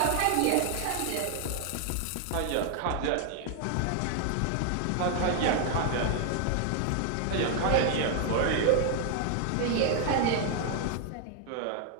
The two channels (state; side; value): different; both; correlation 0.00